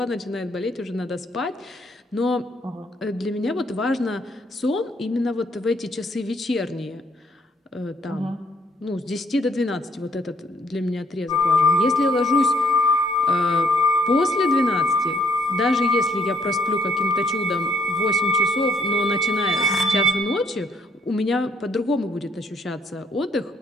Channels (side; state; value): both; normal; correlation 0.68